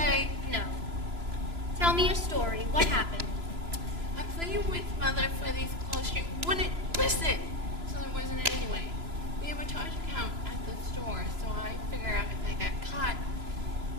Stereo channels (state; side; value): late; left; 3.0 ms